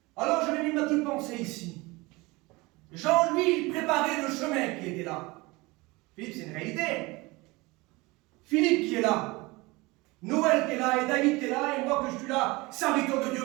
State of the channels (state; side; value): quieter; left; 23.3 dB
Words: Alors je vais mis ma petite pensée ici. Jean, lui, il préparait le chemin qui était là. Philippe, c'est une réalité. Philippe qui est là. Noël qui est là, et David qui est là, et moi que je suis là, serviteur de Dieu.